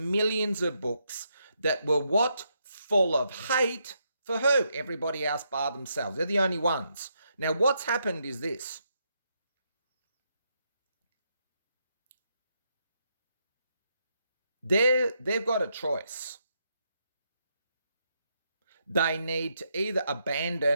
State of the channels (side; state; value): both; inverted; correlation -0.79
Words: millions of books that were what? Full of hate for who? Everybody else bar themselves. They're the only ones. Now, what's happened is this. They've got a choice. They need to either